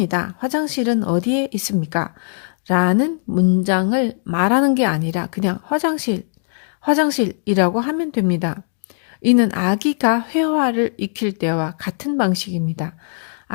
화장실은 어디에 있습니까? 라는 문장을 말하는 게 아니라 그냥 화장실이라고 하면 됩니다. 이는 아기가 회화를 익힐 때와 같은 방식입니다.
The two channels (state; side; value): silent; right; digital silence